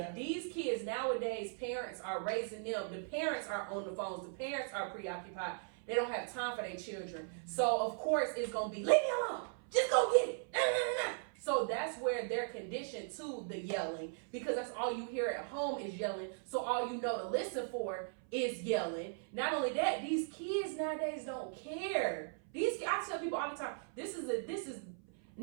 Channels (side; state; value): left; silent; 52 dB below the other